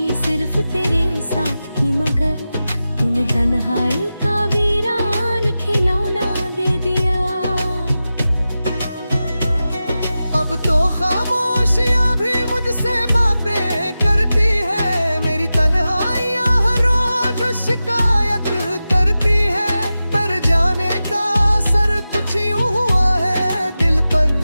सिर्फ तेरे साथ की, मगर तूने तन्हाई का वीरान खिलौना दे दिया। अब तो खामोशियां भी मुझसे बातें करती है, मेरी तन्हाइयां हर रोज शिकायत करती है। पर जाने का असर कुछ यूं हुआ है दिल पर,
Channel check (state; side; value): inverted; both; correlation -0.94